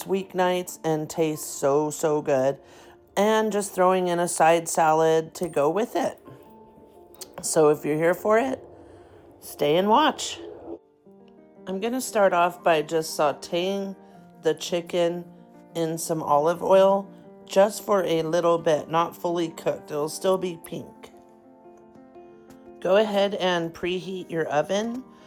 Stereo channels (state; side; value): identical; both; correlation 1.00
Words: weeknights and tastes so good, and just throwing in a side salad to go with it. So if you're here for it, stay and watch. I'm going to start off by just sauteing the chicken in some olive oil just for a little bit, not fully cooked. It'll still be pink. Go ahead and preheat your oven.